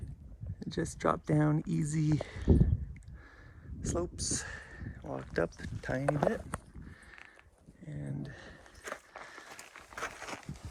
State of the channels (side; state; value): both; identical; correlation 1.00